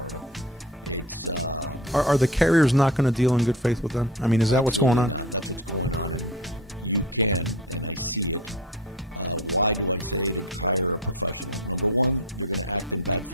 It's are the carriers not going to deal in good faith with them? I mean, is that absolutely what's going on? Not. That's what's going on, and you can, and I see it. Why do I say to hire a professional? Number one, they're going to act in bad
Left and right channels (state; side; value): normal; both; correlation 0.33